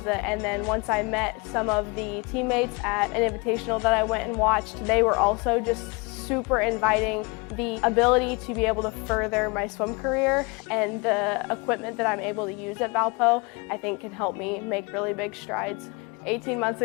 and then once I met some of the teammates at an invitational that I went and watched, they were also just super inviting. The ability to be able to further my swim career and the equipment that I'm able to use at Valpo, I think can help me make really big strides. 18 months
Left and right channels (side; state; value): right; quieter; 28.8 dB